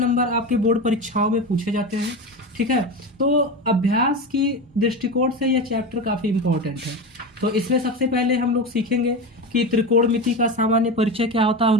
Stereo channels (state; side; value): normal; both; correlation 0.22